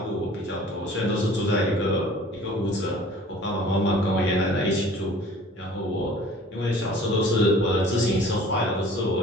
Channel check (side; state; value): both; normal; correlation 0.48